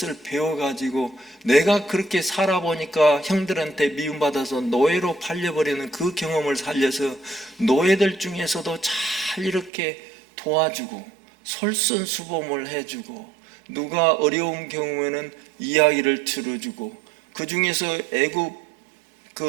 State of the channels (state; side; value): drops out; left; at 9.7 s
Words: 배워가지고 내가 그렇게 살아보니까 형들한테 미움받아서 노예로 팔려버리는 그 경험을 살려서 노예들 중에서도 잘 이렇게 도와주고 솔선수범을 해주고, 누가 어려운 경우에는 이야기를 들어주고, 그 중에서 애굽